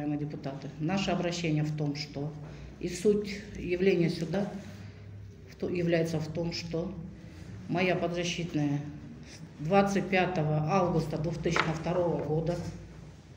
депутаты. Наше обращение в том, что и суть явления суда является в том, что моя подзащитная 25 августа 2002 года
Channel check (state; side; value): identical; both; correlation 1.00